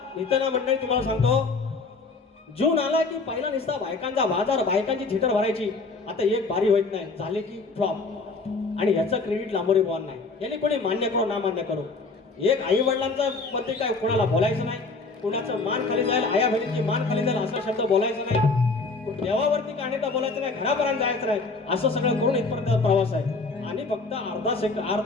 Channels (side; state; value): right; quieter; 3.9 dB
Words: नितना मंडळी तुम्हाला सांगतो, जून आला की पहिला निसता बायकांचा बाजार, बायकांची थिटर भरायची. आता एक बारी होत नाही, झाले की फ्लॉप. आणि ह्याचं क्रेडिट लांबोरी बॉल नाही, याने कोणी मान्य करो ना मान्य करो. एक आई वडिलांचा मध्ये काय कोणाला बोलायचं नाही, कुणाचं मान खाली जाईल, आया बहिणीची मान खाली जाईल असा शब्द बोलायचं नाही, देवावरती काढण्याचा बोलायचं नाही, घरापर्यंत जायचं नाही. असं सगळं करून इथपर्यंत प्रवास आहे. आणि फक्त